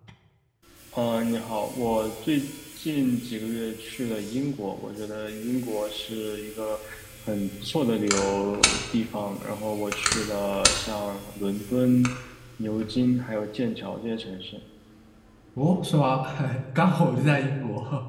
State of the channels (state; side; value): identical; both; correlation 1.00